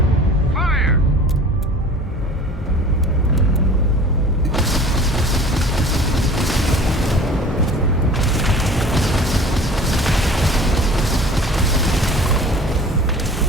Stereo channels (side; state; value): both; normal; correlation 0.44